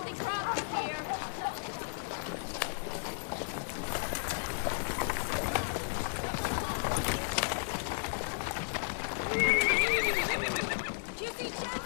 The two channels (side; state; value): right; silent; digital silence